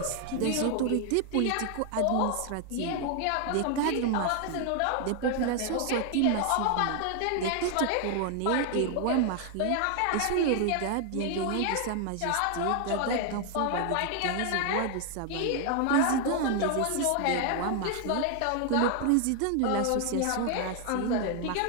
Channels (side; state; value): both; different; correlation 0.00